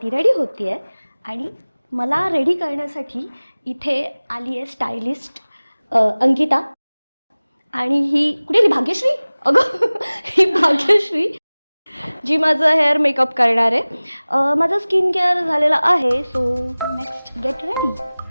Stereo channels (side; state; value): both; inverted; correlation -0.99